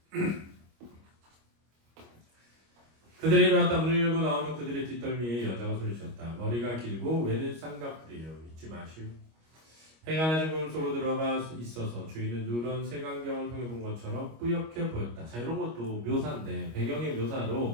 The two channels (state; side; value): late; left; 25 ms